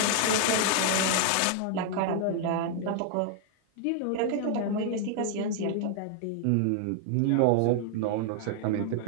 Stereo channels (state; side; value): different; both; correlation 0.00